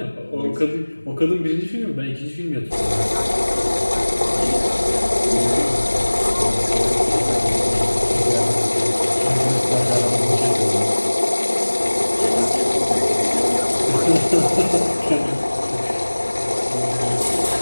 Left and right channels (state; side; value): inverted; both; correlation -1.00